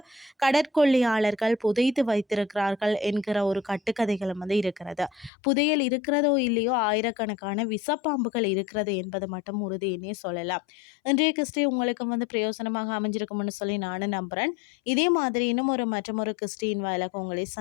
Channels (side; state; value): right; drops out; at 5.3 s